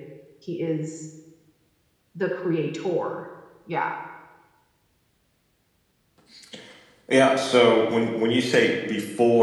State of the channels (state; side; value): identical; both; correlation 1.00